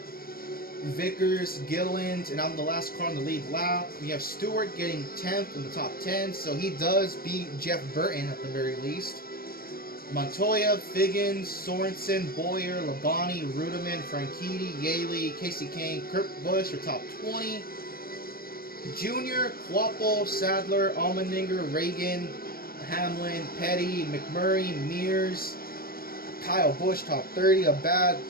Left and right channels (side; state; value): right; late; 0.43 ms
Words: Vickers, Gilland, and I'm the last car on the lead lap. We have Stewart getting 10th in the top 10, so he does beat Jeff Burton at the very least. Montoya, Figgins, Sorensen, Boyer, Labonte, Rudiman, Franchitti, Yaley, Casey Kane, Kurt Busch are top 20. Junior, Quapple, Sadler, Allmendinger, Reagan, Hamlin, Petty, McMurray, Mears, Kyle Busch top 30. A bad